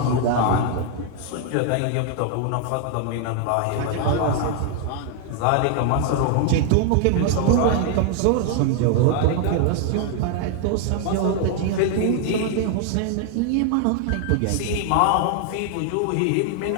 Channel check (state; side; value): different; both; correlation 0.00